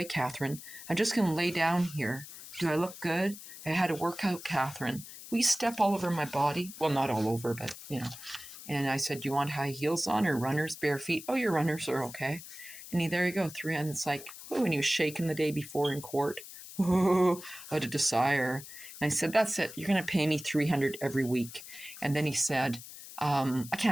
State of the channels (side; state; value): left; noise; hiss, 14 dB below the sound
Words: Catherine, I'm just going to lay down here. Do I look good? I had a workout, Catherine. Will you step all over my body? Well, not all over, but, And I said, do you want high heels on or runners, bare feet? Oh, your runners are okay. And there you go, and it's like, and he was shaking the day before in court. What a desire. And I said, that's it. You're going to pay me $300 every week. And then he said, I